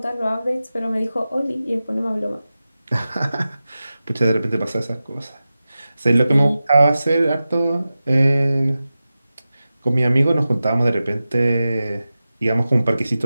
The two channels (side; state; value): both; inverted; correlation -0.94